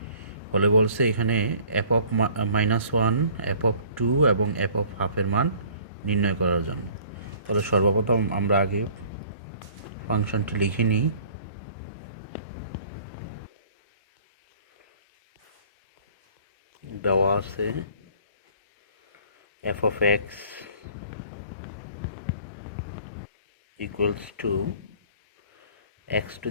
হলে বলছে এখানে এফ অফ -1, এফ অফ 2 এবং এফ অফ হাফের মান নির্ণয় করার জন্য। তাহলে সর্বপ্রথম আমরা আগে ফাংশনটি লিখে নিই। দেওয়া আছে F of X equals to x to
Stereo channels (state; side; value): inverted; both; correlation -0.52